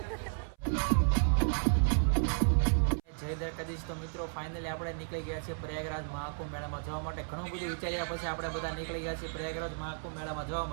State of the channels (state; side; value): silent; left; 56 dB below the other